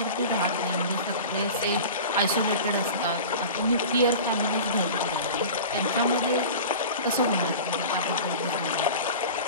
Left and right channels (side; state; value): both; inverted; correlation -0.35